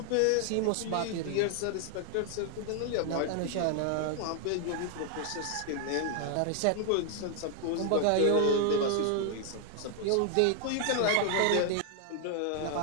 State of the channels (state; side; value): different; both; correlation 0.00